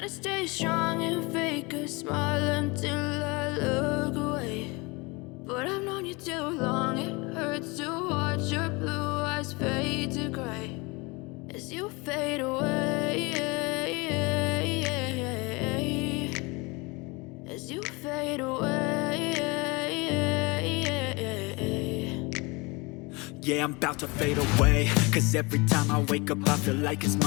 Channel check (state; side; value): quieter; right; 26.4 dB